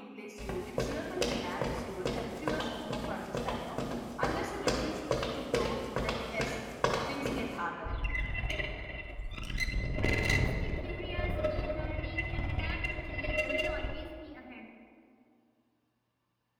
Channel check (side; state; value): both; identical; correlation 1.00